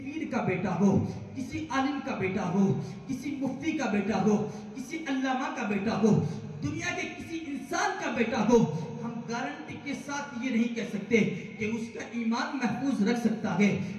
کا بیٹا ہو, کسی عالم کا بیٹا ہو, کسی مفتی کا بیٹا ہو, کسی علامہ کا بیٹا ہو, دنیا کے کسی انسان کا بیٹا ہو, ہم گارنٹی کے ساتھ یہ نہیں کہہ سکتے کہ اس کا ایمان محفوظ رکھ سکتا ہے,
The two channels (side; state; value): both; identical; correlation 1.00